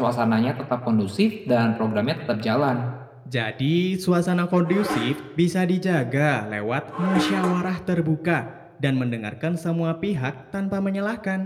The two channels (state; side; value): identical; both; correlation 1.00